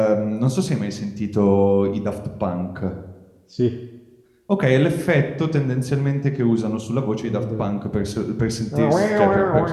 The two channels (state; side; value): identical; both; correlation 1.00